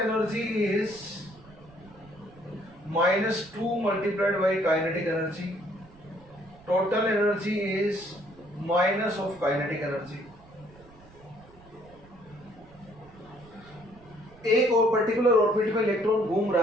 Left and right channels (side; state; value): right; noise; rumble, 24 dB below the sound